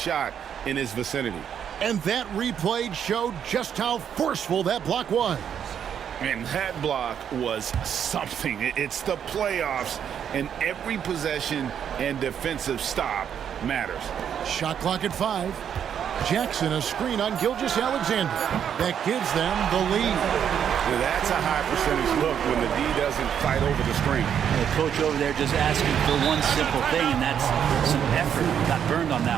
in his vicinity. And that replay showed just how forceful that block was. And that block was something. It's the playoffs, and every possession and defensive stop matters. Shot clock at 5. Jackson, a screen on Gilgeous-Alexander. That gives them the lead. That's a high percentage look when the D doesn't fight over the screen. The coach over there just asking for one simple thing, and that's some effort. Got burned on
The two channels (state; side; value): quieter; left; 8.6 dB